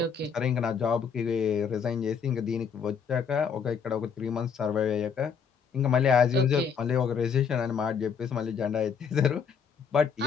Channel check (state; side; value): quieter; right; 6.5 dB